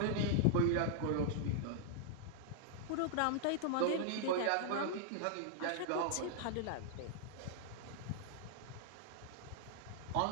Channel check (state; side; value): different; both; correlation -0.01